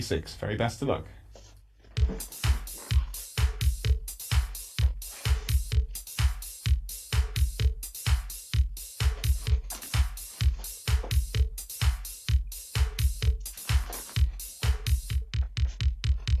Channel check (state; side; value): identical; both; correlation 1.00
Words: Very best of luck.